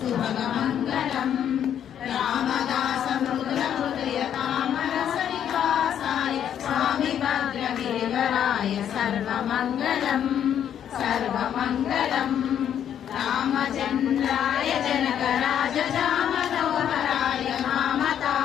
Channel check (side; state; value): right; quieter; 9.5 dB